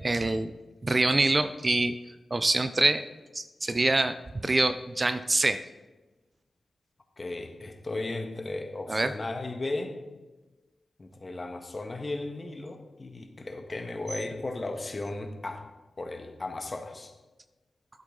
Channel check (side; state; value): both; normal; correlation 0.97